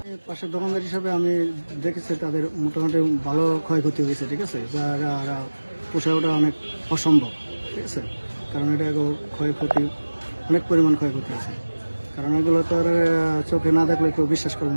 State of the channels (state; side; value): inverted; both; correlation -1.00